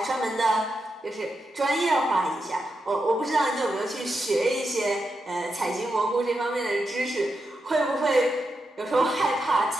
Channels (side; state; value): both; normal; correlation 0.86